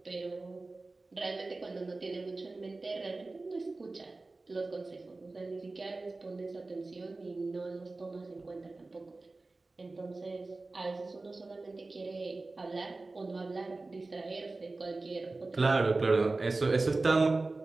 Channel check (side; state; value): left; quieter; 3.3 dB